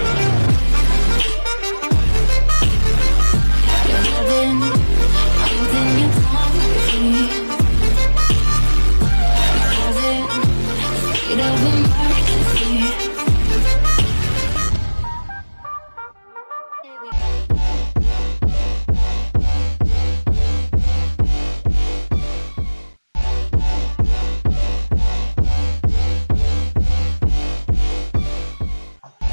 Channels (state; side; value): inverted; both; correlation -1.00